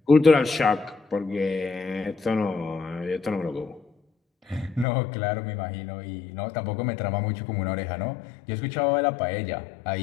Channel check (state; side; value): drops out; right; at 4.9 s